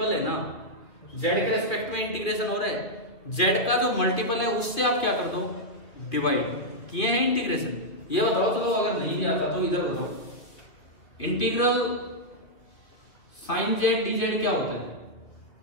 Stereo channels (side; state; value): right; late; 2.5 ms